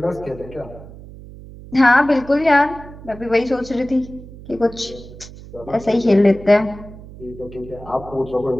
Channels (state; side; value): noise; right; hum, 17 dB below the sound